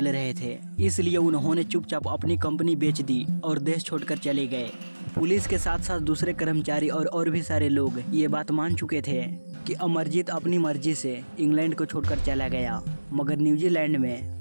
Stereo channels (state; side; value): inverted; both; correlation -1.00